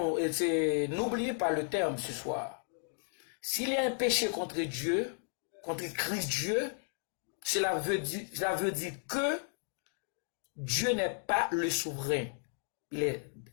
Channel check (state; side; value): silent; right; 55 dB below the other